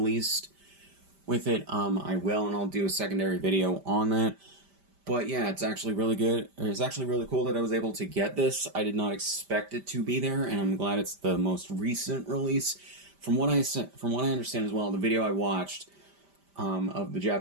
with it, I will, and I'll do a secondary video on that. But yeah, it's actually really good. It's actually really cool that I was able to get this. I did not expect it to be there, and I'm glad it's the most recent release. From what I understand as well, the video I watched of the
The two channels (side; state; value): left; late; 5.1 ms